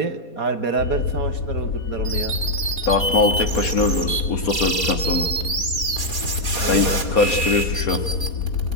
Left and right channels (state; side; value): late; right; 4.2 ms